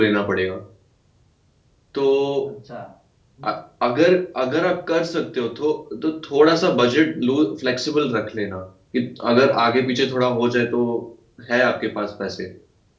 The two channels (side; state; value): both; identical; correlation 1.00